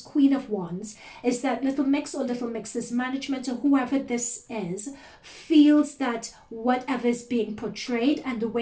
of Wands is that Little Mix or Little Mix's management or whoever this is feels that whatever is being portrayed and the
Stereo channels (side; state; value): both; identical; correlation 1.00